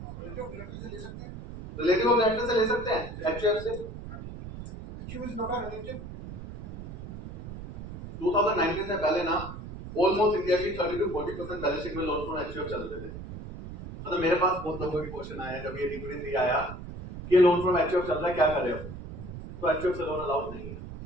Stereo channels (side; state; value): right; noise; rumble, 11 dB below the sound